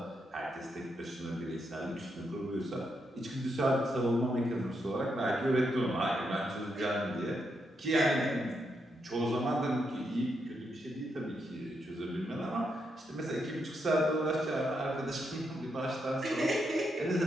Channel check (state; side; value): normal; both; correlation 0.81